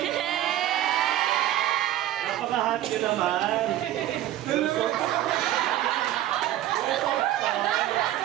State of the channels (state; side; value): quieter; left; 13.3 dB